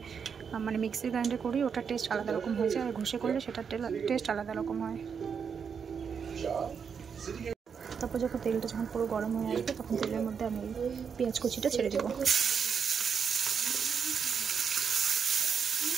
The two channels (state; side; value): quieter; left; 6.6 dB